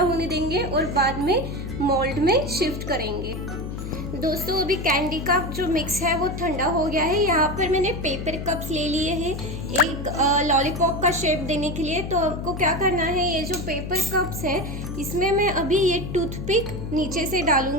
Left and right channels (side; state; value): left; noise; hum, 7 dB below the sound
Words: देंगे और बाद में मोल्ड में शिफ्ट करेंगे। दोस्तों अभी कैंडी का जो मिक्स है वो ठंडा हो गया है। यहाँ पर मैंने पेपर कप्स ले लिए हैं एक लॉलीपॉप का शेप देने के लिए। तो आपको क्या करना है, ये जो पेपर कप्स है इसमें मैं अभी ये टूथपिक नीचे से